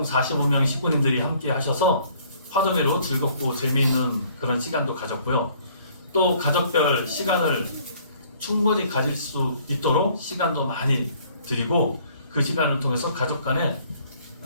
45명 식구님들이 함께 하셔서 화동회로 즐겁고 재미있는 그런 시간도 가졌고요. 또 가족별 시간을 충분히 가질 수 있도록 시간도 많이 드리고 그 시간을 통해서 가족 간에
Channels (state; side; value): inverted; both; correlation -0.59